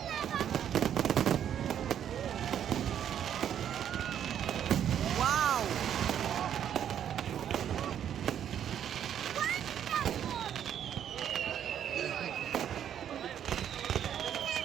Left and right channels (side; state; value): left; quieter; 9.6 dB